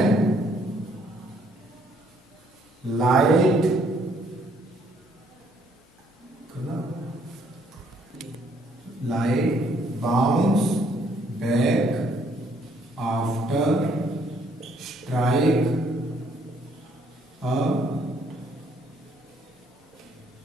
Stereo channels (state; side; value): normal; both; correlation 0.66